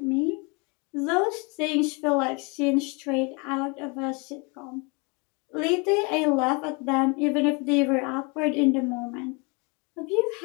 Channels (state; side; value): quieter; right; 30.9 dB